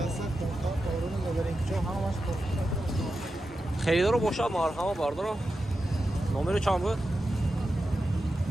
kontak kavrunu gaberin ki çok hamaş kontak. Xeridor boşa marhama barodaro. Nomeri çam bu?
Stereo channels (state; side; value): normal; both; correlation 0.90